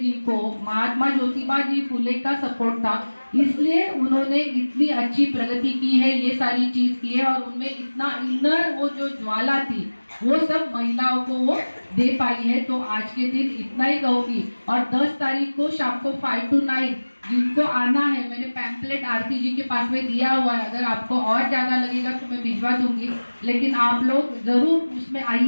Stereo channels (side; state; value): both; inverted; correlation -1.00